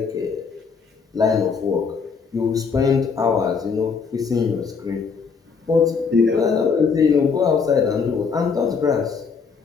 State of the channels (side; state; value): right; quieter; 5.5 dB